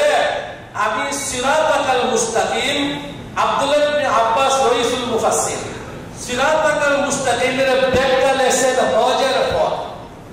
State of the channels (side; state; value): both; identical; correlation 1.00